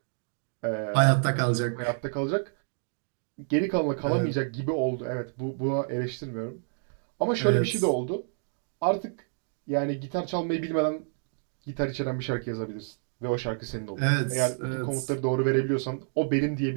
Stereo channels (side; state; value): left; silent; digital silence